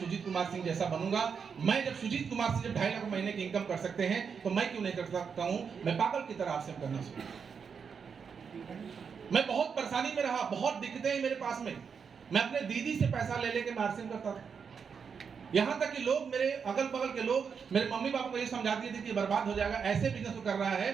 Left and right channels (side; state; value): left; quieter; 6.3 dB